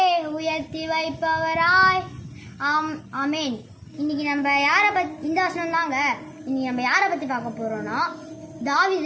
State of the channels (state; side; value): identical; both; correlation 1.00